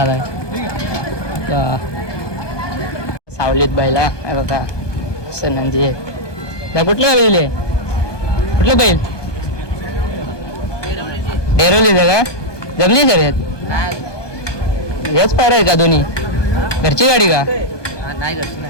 सावलीत बायला बघा. नंदी आहे. त्या कुठल्या बैल आहे? कुठलं बैल? डेरोलीचं का? जमली शर्यत? हेच पायरा आहे का दोन्ही? घरची गाडी का? नाही घरची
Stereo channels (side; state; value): right; late; 1.2 ms